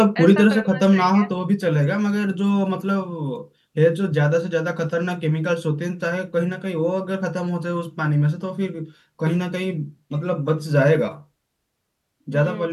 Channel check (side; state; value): both; identical; correlation 1.00